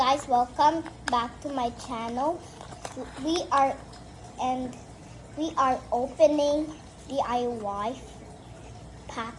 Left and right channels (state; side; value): identical; both; correlation 1.00